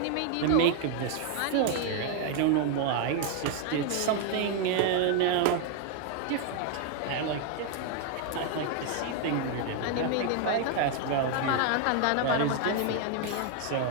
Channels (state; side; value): different; both; correlation 0.00